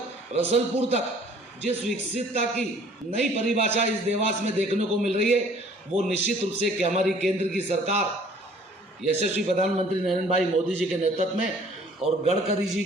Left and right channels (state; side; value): normal; both; correlation 0.55